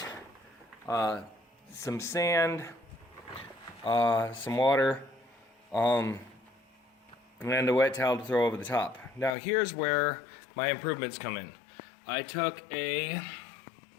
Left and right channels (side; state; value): right; drops out; at 9.3 s